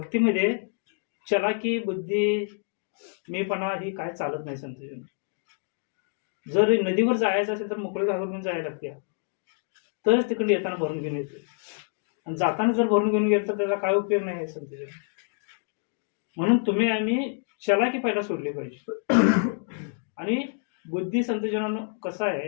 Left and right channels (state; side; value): silent; right; digital silence